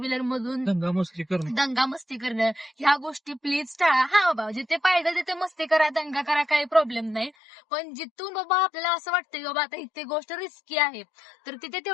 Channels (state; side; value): drops out; right; at 7.3 s